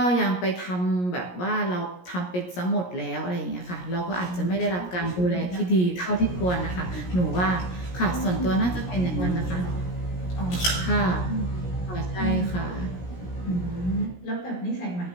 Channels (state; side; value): late; right; 17 ms